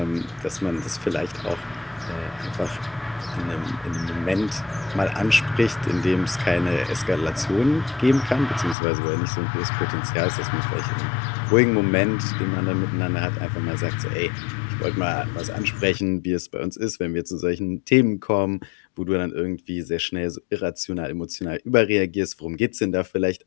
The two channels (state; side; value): drops out; right; at 8.8 s